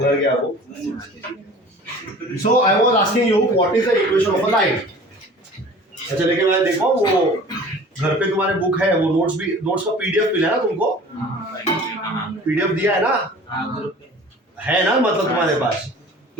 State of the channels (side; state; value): both; normal; correlation 0.44